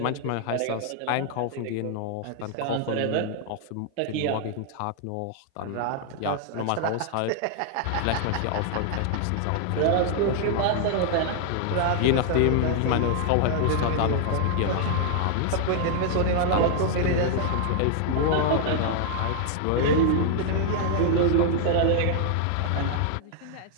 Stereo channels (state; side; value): different; both; correlation 0.00